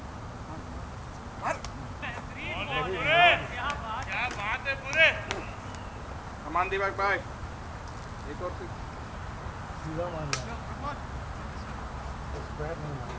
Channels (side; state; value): both; identical; correlation 1.00